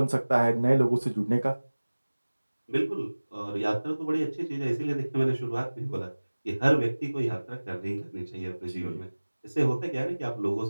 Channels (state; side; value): inverted; both; correlation -1.00